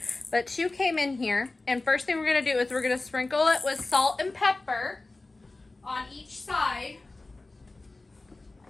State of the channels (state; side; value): quieter; right; 3.2 dB